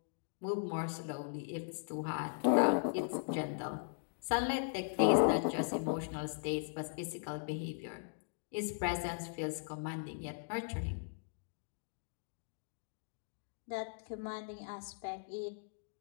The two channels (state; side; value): silent; right; digital silence